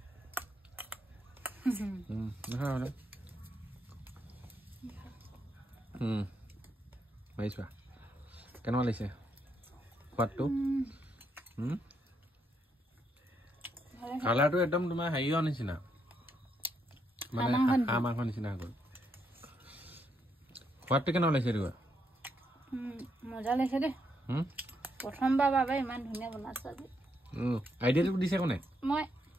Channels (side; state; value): both; normal; correlation 0.77